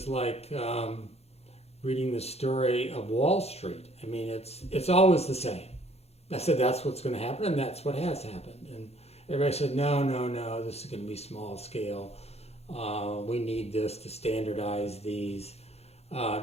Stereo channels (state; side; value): late; right; 0.30 ms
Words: like reading the story of Wall Street. I mean, it's always the same. I said, that's what's going to happen, and that's what has happened. And everybody said, no, this is going to be small scale. We need this to standardize these. I